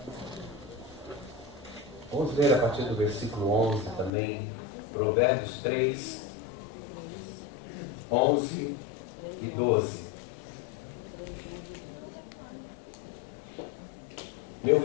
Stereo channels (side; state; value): right; drops out; at 4.1 s